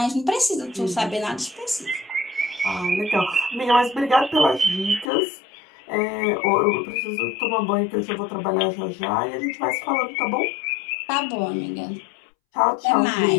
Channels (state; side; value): drops out; right; at 5.1 s